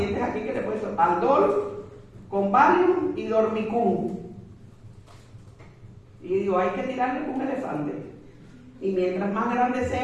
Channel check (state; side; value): identical; both; correlation 1.00